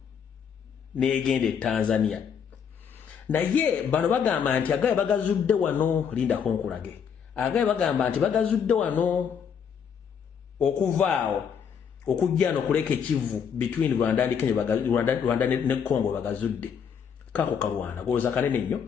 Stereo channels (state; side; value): quieter; right; 7.3 dB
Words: negende Tanzania. Naye bano bagamba nti agaye bagazudde wano linda konkulage. Agaye bagamba nti bagazudde wano okuvaawo okujja no kuleke Kivu between Rwanda and Kenya Rwanda ne Congo bagazudde. Kako kalwana goza kanene nnyo